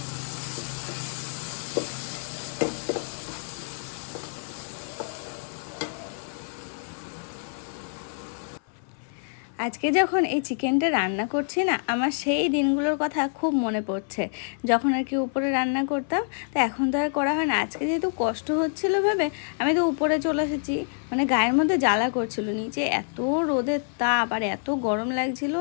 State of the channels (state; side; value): silent; right; 56 dB below the other